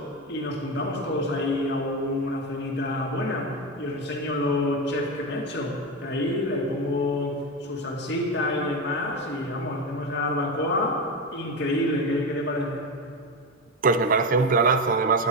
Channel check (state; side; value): normal; both; correlation 0.16